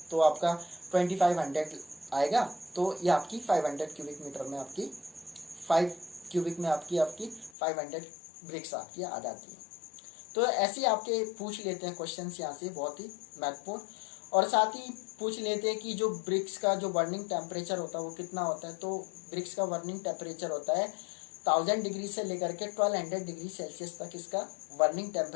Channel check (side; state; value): right; drops out; at 7.5 s